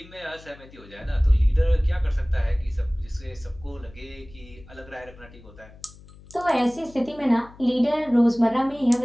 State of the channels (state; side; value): noise; left; hum, 22 dB below the sound